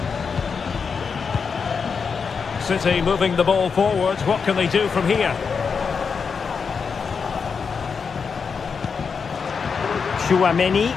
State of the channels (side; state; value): right; quieter; 5.7 dB